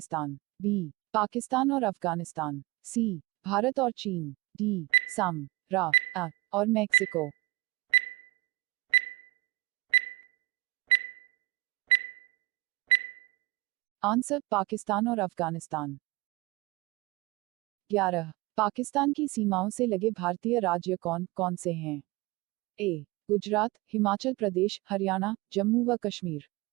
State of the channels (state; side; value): quieter; left; 22.1 dB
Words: बी पाकिस्तान और अफगानिस्तान, सी भारत और चीन। डी सम रा अ और मैक्सिको। आंसर पाकिस्तान और अफगानिस्तान। 11 पाकिस्तान की सीमाओं से लगे भारतीय राज्य कौन कौन से हैं? ए गुजरात, हिमाचल प्रदेश, हरियाणा, जम्मू व कश्मीर।